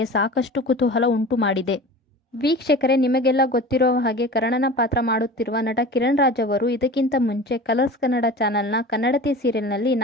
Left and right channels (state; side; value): normal; both; correlation 0.37